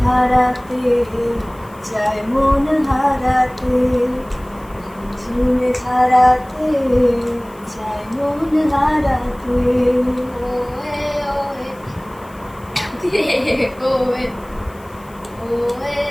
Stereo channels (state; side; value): noise; left; hiss, 27 dB below the sound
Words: ধারাতে চায় মন হারাতে, ঝিমে ধারাতে চায় মন হারাতে। ওয়ে ওয়ে ওয়ে ওয়ে